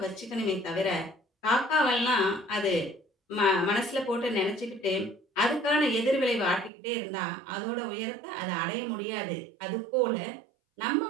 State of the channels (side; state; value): left; drops out; at 6.7 s